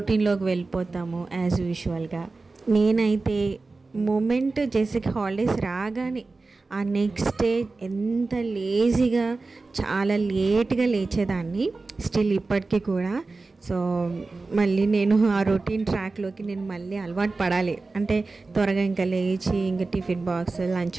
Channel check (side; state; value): left; quieter; 3.7 dB